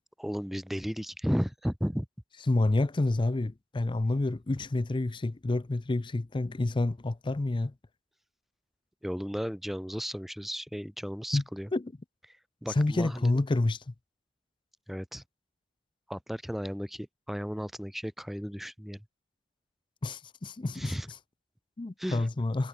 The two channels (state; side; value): normal; both; correlation 0.94